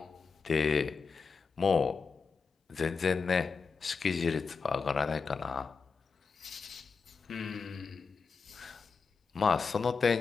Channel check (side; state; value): right; quieter; 5.1 dB